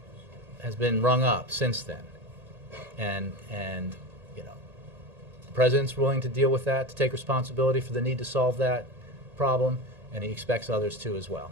up since then, and the president's willing to deal with that, to take responsibility for the need to solve that problem, and he expects others to as well.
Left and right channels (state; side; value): late; left; 1.9 ms